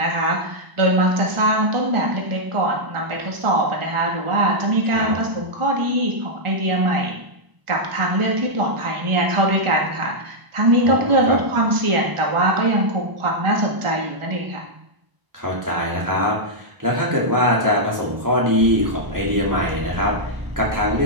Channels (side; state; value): left; late; 1.0 ms